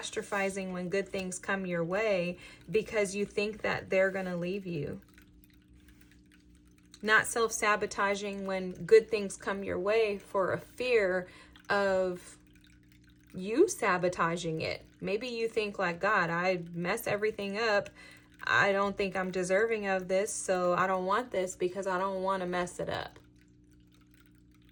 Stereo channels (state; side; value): identical; both; correlation 1.00